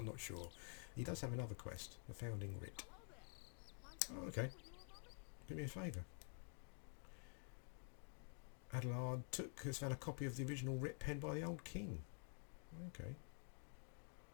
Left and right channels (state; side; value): quieter; right; 36.3 dB